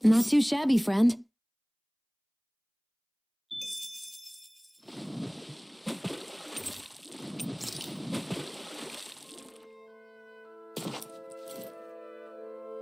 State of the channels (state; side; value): identical; both; correlation 1.00